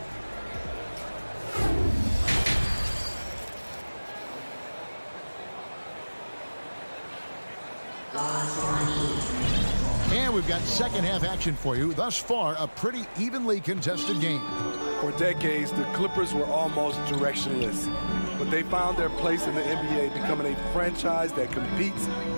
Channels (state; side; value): inverted; both; correlation -1.00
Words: And we've got second half action for you. Thus far, a pretty evenly contested game. For decades, the Clippers were almost directionless, but they found their place in the NBA, becoming a franchise that competes